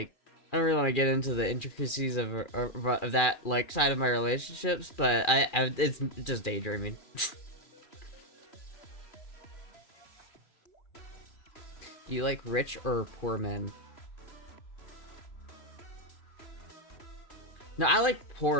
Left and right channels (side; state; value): right; late; 2.4 ms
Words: I don't really want to get into the intricacies of that, like, side of my relationships, but it's just daydreaming. Do you like rich or poor men? No, I like